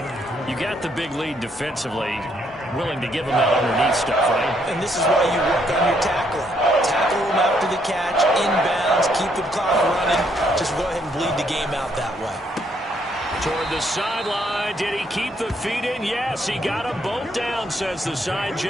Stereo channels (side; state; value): both; normal; correlation 0.71